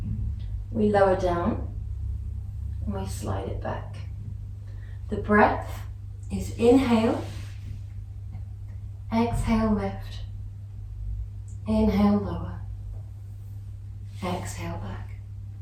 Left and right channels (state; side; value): identical; both; correlation 1.00